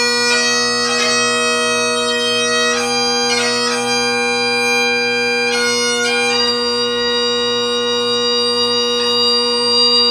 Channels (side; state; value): both; identical; correlation 1.00